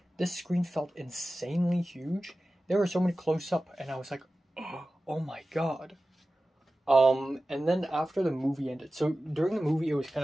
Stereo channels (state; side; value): normal; both; correlation 0.95